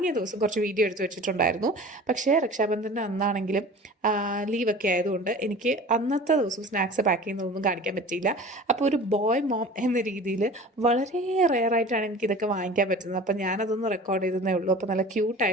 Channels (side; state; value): both; normal; correlation 0.40